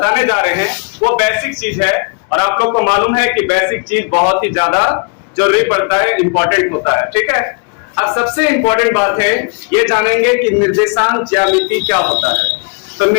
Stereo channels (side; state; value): right; quieter; 34.9 dB